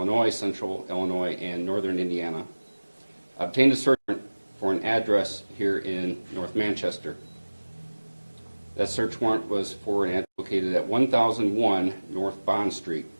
Central Illinois, and Northern Indiana, obtained a search warrant for an address here in North Manchester. That search warrant was for an address located at 1001 North Bond Street.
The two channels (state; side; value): inverted; both; correlation -1.00